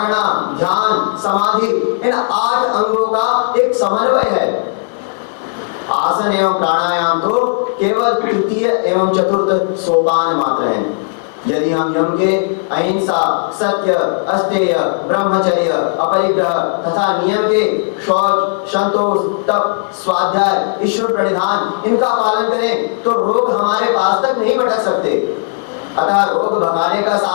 ध्यान, समाधि, इन 8 अंगों का एक समन्वय है। आसन एवं प्राणायाम तो केवल तृतीय एवं चतुर्थ सोपान मात्र हैं। यदि हम यम के अहिंसा, सत्य, अस्तेय, ब्रह्मचर्य, अपरिग्रह तथा नियम के शौच, संतोष, तप, स्वाध्याय, ईश्वर प्रणिधान, इनका पालन करें तो रोग हमारे पास तक नहीं भटक सकते। अतः रोग भगाने का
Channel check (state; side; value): silent; right; digital silence